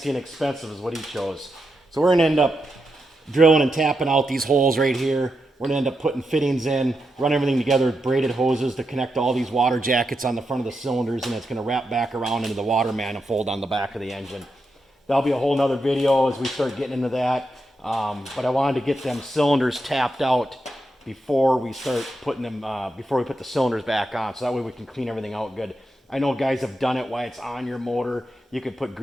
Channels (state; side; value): normal; both; correlation 0.85